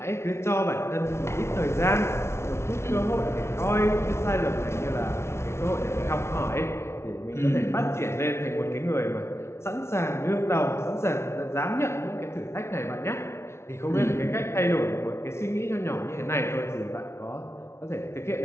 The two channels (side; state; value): right; late; 0.13 ms